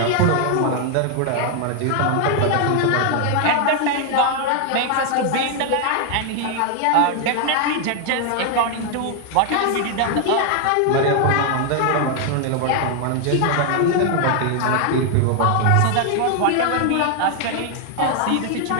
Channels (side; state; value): both; different; correlation 0.00